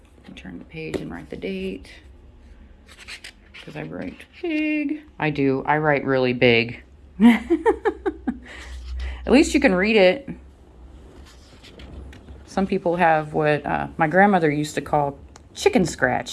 Turn the page and write the date. Because I write big. I do. I write really big. At least you can read it. Some people have what my grandmother used to call chicken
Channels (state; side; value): identical; both; correlation 1.00